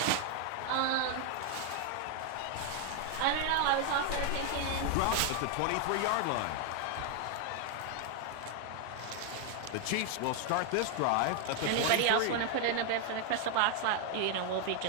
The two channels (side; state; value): both; different; correlation 0.00